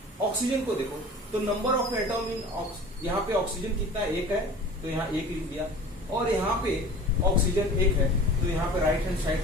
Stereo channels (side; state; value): both; normal; correlation 0.41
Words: ऑक्सीजन को देखो तो नंबर ऑफ एटम इन यहाँ पे ऑक्सीजन कितना 1 है, तो यहाँ 1 लिख दिया। और यहाँ पे ऑक्सीजन 1 है, तो यहाँ पे राइट हैंड साइड